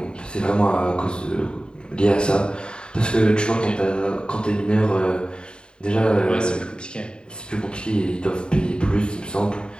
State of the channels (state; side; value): late; right; 0.050 ms